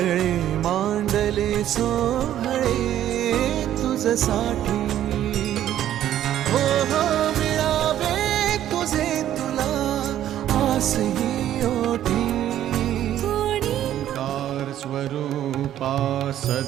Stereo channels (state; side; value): quieter; left; 11.8 dB